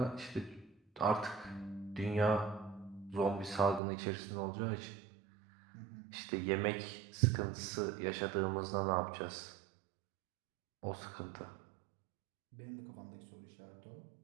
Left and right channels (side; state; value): left; drops out; at 3.8 s